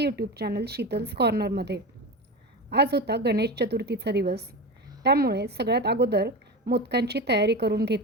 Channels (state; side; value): normal; both; correlation 0.24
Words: चॅनल शीतल्स कॉर्नरमध्ये. आज होता गणेश चतुर्थीचा दिवस, त्यामुळे सगळ्यात अगोदर मोदकांची तयारी करून